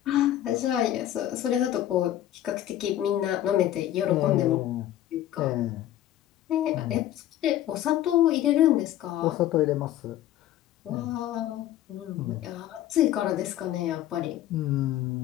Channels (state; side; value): quieter; right; 12.7 dB